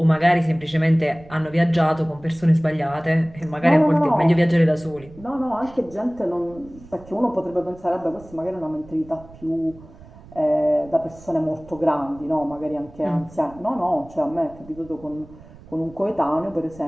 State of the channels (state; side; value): noise; right; rumble, 21 dB below the sound